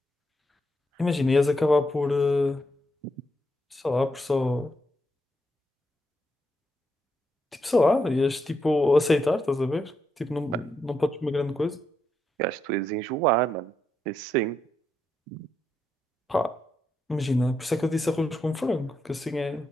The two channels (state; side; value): normal; both; correlation 0.81